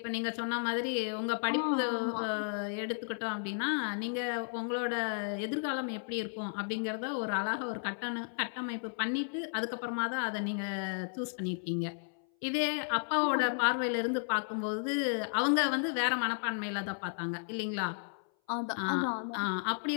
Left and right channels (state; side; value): silent; right; 55 dB below the other